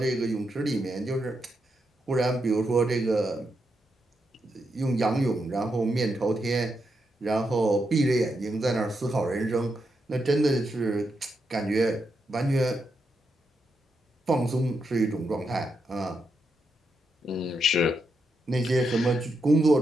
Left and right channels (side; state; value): both; normal; correlation 0.83